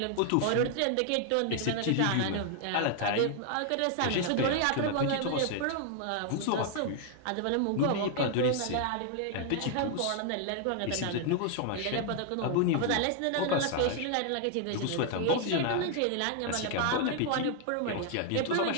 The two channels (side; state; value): both; different; correlation 0.00